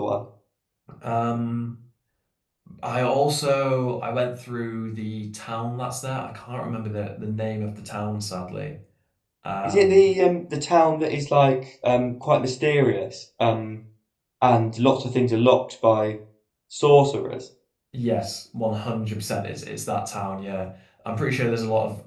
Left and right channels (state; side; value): identical; both; correlation 1.00